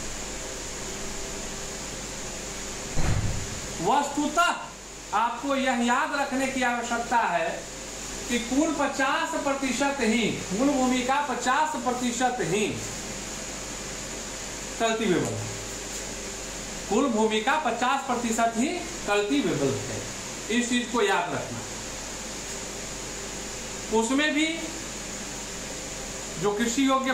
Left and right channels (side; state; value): both; identical; correlation 1.00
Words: वस्तुतः आपको यह याद रखने की आवश्यकता है कि कुल 50% ही, कुल भूमि का 50% ही कल्टीवेबल है। कुल भूमि का 50% ही कल्टीवेबल है। इस चीज को याद रखना। उसमें भी जो कृषि योग्य